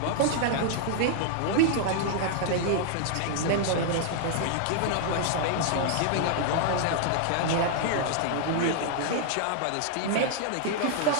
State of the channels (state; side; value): different; both; correlation -0.01